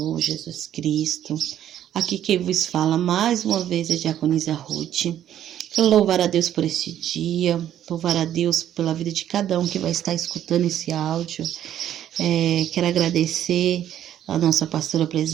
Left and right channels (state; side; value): quieter; left; 11.1 dB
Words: Jesus Cristo. Aqui quem vos fala mais uma vez é a diaconisa Ruth. Quero louvar a Deus por este dia, louvar a Deus pela vida de cada um que vai estar escutando esse áudio. Quero agradecer a nossa pastora